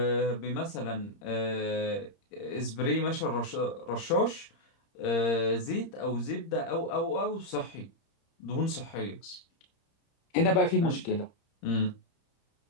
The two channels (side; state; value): right; late; 30 ms